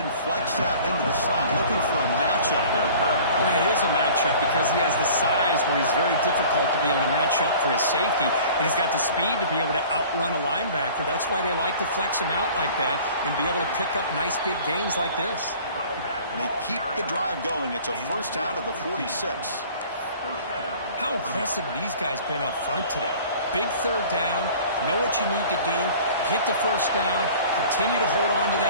flexed out into the slot, looking for a matchup there, Kurt. Well, it is a matchup because he has the size where he's very difficult to be able to match up for his safety, and he's got the speed to be able to outrun a linebacker. That's why they like to flex him out like that and be able to pick up nice big gains like this. They keep the drive going. It's a first down to the 46. How impressive these guys been up front today. Big third down, know what you need to do, get the first down, continue to hold on to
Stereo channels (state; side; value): inverted; both; correlation -0.46